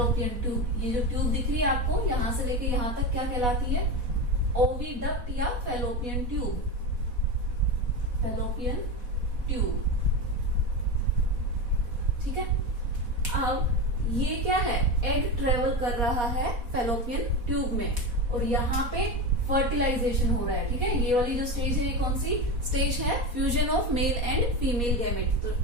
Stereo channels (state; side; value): late; left; 4.1 ms